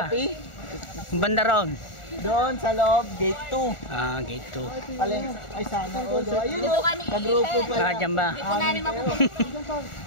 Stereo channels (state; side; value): late; right; 1.4 ms